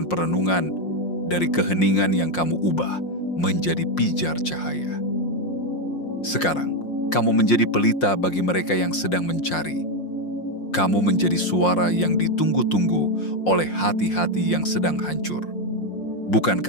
perenungan, dari keheningan yang kamu ubah menjadi pijar cahaya. Sekarang, kamu menjadi pelita bagi mereka yang sedang mencari. Kamu menjadi suara yang ditunggu-tunggu oleh hati-hati yang sedang hancur. Bukan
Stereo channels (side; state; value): right; late; 5.6 ms